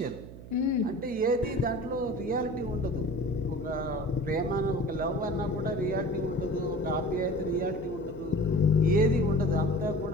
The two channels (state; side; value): noise; right; hum, 15 dB below the sound